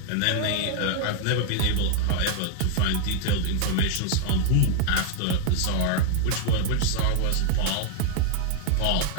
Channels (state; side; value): different; both; correlation 0.00